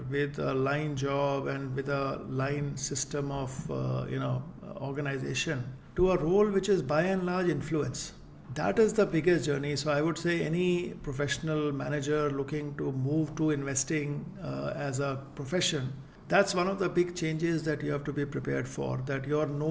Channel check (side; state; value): both; identical; correlation 1.00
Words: with a line job and with a line system of organization to a role which is by and large influence. That is the biggest journey. So I would say any professional manager looking to move to investing as a profession, that's one of the big changes that you have to be prepared for. That you're